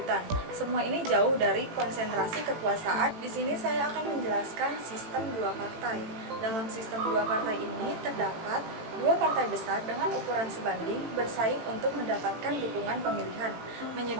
Semua ini jauh dari konsentrasi kekuasaan. Di sini saya akan menjelaskan sistem dua partai. Dalam sistem dua partai ini terdapat dua partai besar dengan ukuran sebanding bersaing untuk mendapatkan dukungan pemilihan,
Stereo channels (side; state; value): left; late; 18 ms